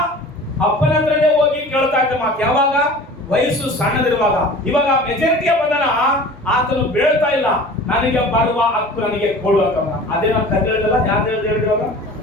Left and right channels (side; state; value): both; normal; correlation 0.41